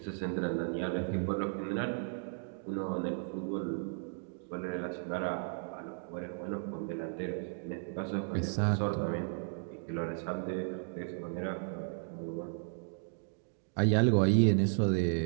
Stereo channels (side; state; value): left; silent; digital silence